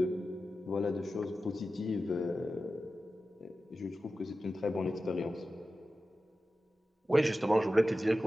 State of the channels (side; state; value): both; normal; correlation 0.93